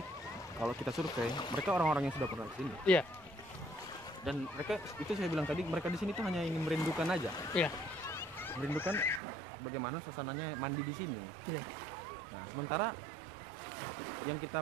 kalau kita survei, mereka orang-orang yang sudah pernah ke sini. Iya. Dan mereka itu saya bilang tadi, mereka di sini tuh hanya ingin merindukan aja. Iya. Merindukan bagaimana suasananya mandi di sini. Iya. Nah, sementara yang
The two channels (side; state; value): left; drops out; at 9.2 s